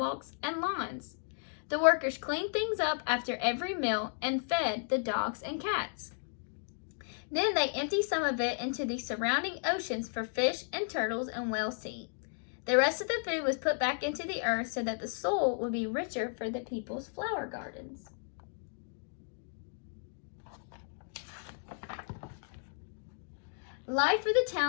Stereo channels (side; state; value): right; silent; digital silence